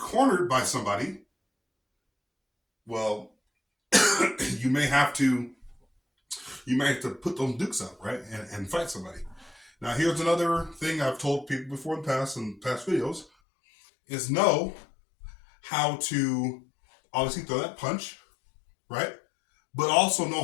by somebody, well, you may have to put those dukes up, right? And fight somebody. Now, here's another thing I've told people before in past videos, is know how to obviously throw that punch, right? But also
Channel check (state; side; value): drops out; right; at 13.2 s